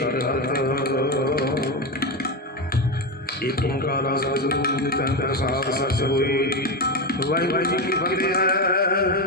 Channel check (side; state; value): both; normal; correlation 0.14